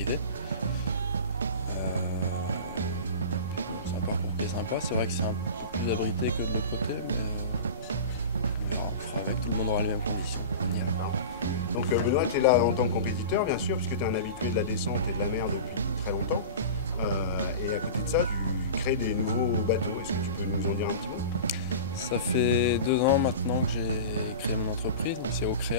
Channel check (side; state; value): both; inverted; correlation -0.32